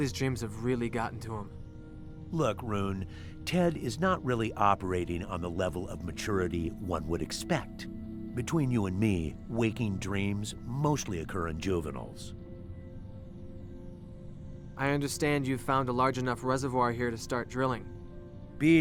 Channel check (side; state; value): both; identical; correlation 1.00